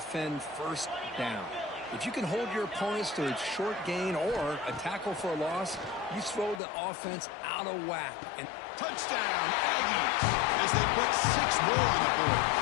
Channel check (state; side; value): drops out; right; at 6.6 s